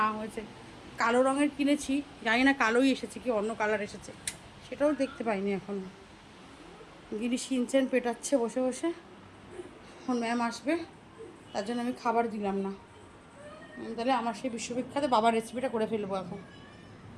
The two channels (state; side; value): identical; both; correlation 1.00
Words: না হয়েছে। কালো রঙের কিনেছি, জানি না কালোই এসেছে কি অন্য কালার এসেছে, সেটাও দেখতে পাইনি এখনও। গিরি শিনচেন পেটাচ্ছে বসে বসে, এখন ম্যাম আসবে, তার জন্য আমি খাবার দিলাম না। তাহলে আমার সেই বিশ্ববিখ্যাত বাবার রেসিপিটা করে ফেলবো এখন।